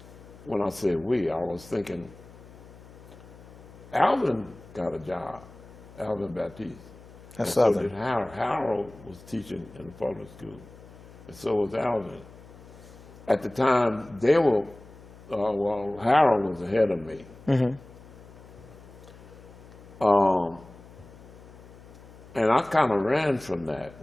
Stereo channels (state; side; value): noise; left; hum, 20 dB below the sound